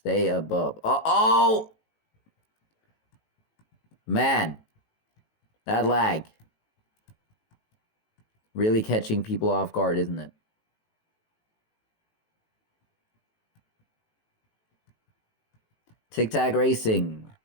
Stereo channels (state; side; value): late; right; 18 ms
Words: above. Oh! Man. That lag. Really catching people off guard, isn't it? Tic Tac Racing